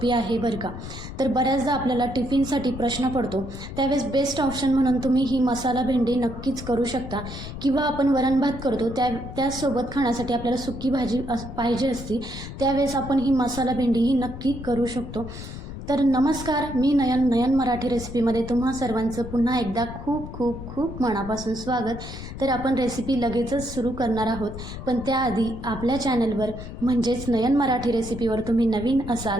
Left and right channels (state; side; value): noise; left; rumble, 10 dB below the sound